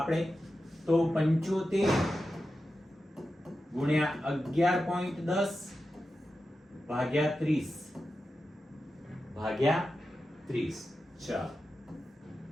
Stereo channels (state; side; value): normal; both; correlation 0.91